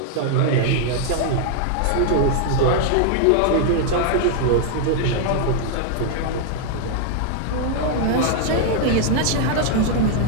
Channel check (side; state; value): both; different; correlation 0.00